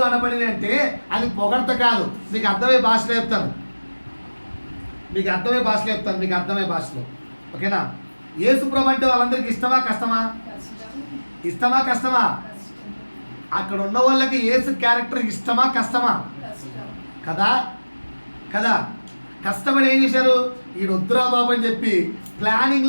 అనబడి అంటే అది పొగడత కాదు. మీకు అర్థమయ్యే భాషలో చెప్తాను, మీకు అర్థమయ్యే భాషలో. ఓకేనా? యేసుప్రభు అంటే వాళ్ళందరికీ ఇష్టమా కష్టమా? అక్కడ ఉన్న వాళ్ళకి యేసు క్యారెక్టర్ ఇష్టమా కష్టమా? కదా. కష్టపడి ఏం చేశారు? ఈ వద్దురా బాబు అని చెప్పి ప్లానింగ్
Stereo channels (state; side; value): inverted; both; correlation -1.00